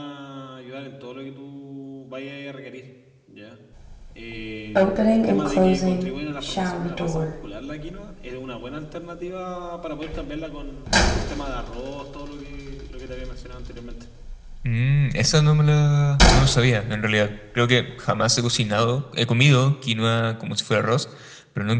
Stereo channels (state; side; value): identical; both; correlation 1.00